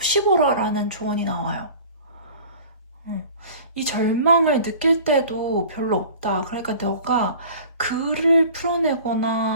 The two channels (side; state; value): both; inverted; correlation -0.43